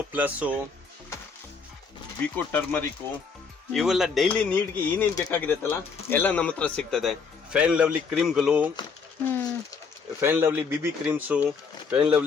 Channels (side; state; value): right; quieter; 5.3 dB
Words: plus, Vicco turmeric ಇವೆಲ್ಲ ಡೈಲಿ ನೀಡ್ಗೆ ಏನೇನ್ ಬೇಕಾಗಿದೆತ್ತಲ್ಲ ಎಲ್ಲ ನಮ್ಮ ಹತ್ರ ಸಿಗ್ತದೆ. ಫೇರ್ ಅಂಡ್ ಲವ್ಲಿ ಕ್ರೀಮ್ಗಳು, fair and lovely BB creams, fair and